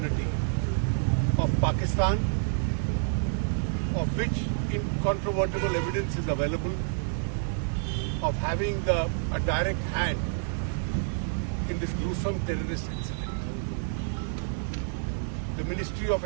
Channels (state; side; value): silent; left; digital silence